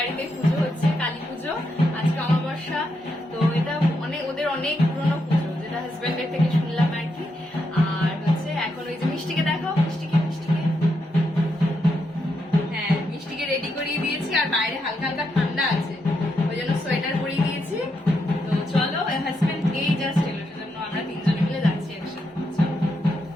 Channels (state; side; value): normal; both; correlation 0.81